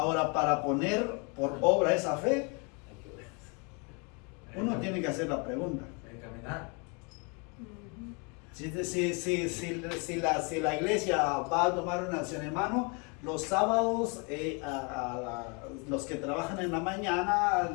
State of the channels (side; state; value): right; quieter; 33.3 dB